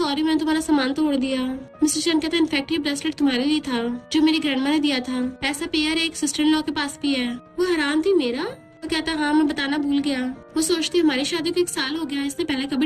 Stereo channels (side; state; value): both; identical; correlation 1.00